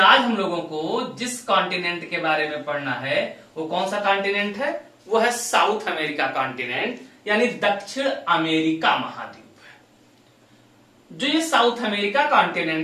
आज हम लोगों को जिस कॉन्टिनेंट के बारे में पढ़ना है वो कौन सा कॉन्टिनेंट है, वो है साउथ अमेरिका कॉन्टिनेंट, यानी दक्षिण अमेरिका महाद्वीप है। जो ये साउथ अमेरिका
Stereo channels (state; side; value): identical; both; correlation 1.00